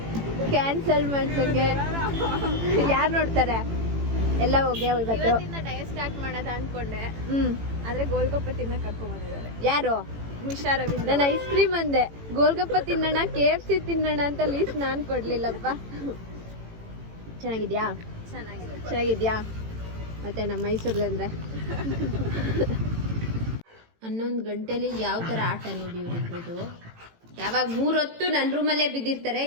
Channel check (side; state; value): left; late; 18 ms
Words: ಕ್ಯಾನ್ಸಲ್ ಮಾಡ್ಸೋಕ್ಕೆ ಯಾರು ನೋಡ್ತಾರೆ? ಎಲ್ಲ ಹೋಗಿ ಇವತ್ತು ಡಯಟ್ ಸ್ಟಾರ್ಟ್ ಮಾಡೋದ ಅನ್ಕೊಂಡೆ. ಹ್ಞೂ, ಆದ್ರೆ ಗೋಲ್ಗಪ್ಪ ತಿನ್ನಕ್ ಕರ್ಕೊಂಡ್ ಬಂದಿದ್ದಾರೆ. ಯಾರು? ಮಿಶಾ ರವೀಂದ್ರ. ನಾನು ಐಸ್ ಕ್ರೀಮ್ ಅಂದೆ, ಗೋಲ್ಗಪ್ಪ ತಿನ್ನೋಣ, KFC ತಿನ್ನೋಣ ಅಂತ ಲೀಸ್ಟ್ ನಾನು ಕೊಡ್ಲಿಲ್ಲಪ್ಪ. ಚೆನ್ನಾಗಿದ್ಯಾ? ಚೆನ್ನಾಗಿದ್ಯಾ? ಮತ್ತೆ ನಮ್ಮ ಮೈಸೂರಲ್ಲಿ 11 ಗಂಟೆಲಿ ಯಾವ ಥರ ಆಟ ನೋಡಿ ಇವರಿಬ್ರದ್ದು. ಯಾವಾಗ 3 ಹೊತ್ತು ನನ್ನ ರೂಮಲ್ಲೇ ಬಿದ್ದಿರ್ತಾರೆ.